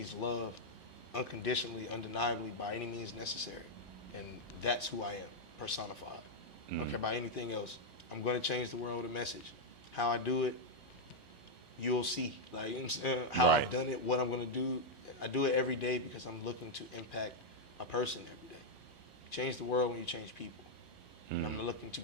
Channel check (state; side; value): normal; both; correlation -0.02